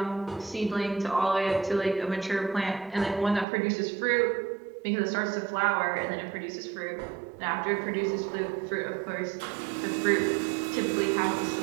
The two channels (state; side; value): drops out; left; at 3.5 s